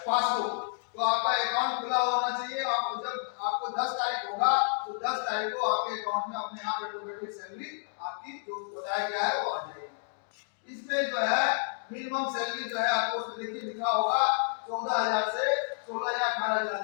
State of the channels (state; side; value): silent; right; digital silence